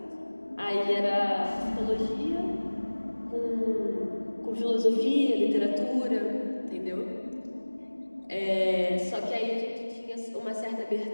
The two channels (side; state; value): both; inverted; correlation -1.00